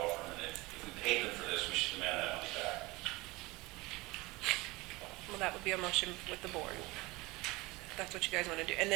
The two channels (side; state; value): left; quieter; 22.4 dB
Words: firm, and if we paid them for this, we should demand that money back. Well, that would be a motion with the board. That's what you guys want to do. And